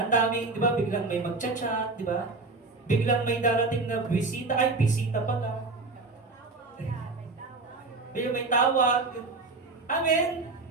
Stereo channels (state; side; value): quieter; left; 3.6 dB